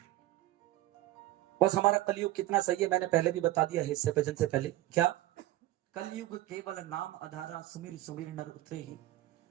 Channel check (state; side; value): quieter; left; 15.9 dB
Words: बस हमारा कलयुग कितना सही है मैंने पहले भी बता दिया है इससे भजन से पहले। क्या? कलयुग केवल नाम आधारा, सुमिर सुमिर नर उतरे ही।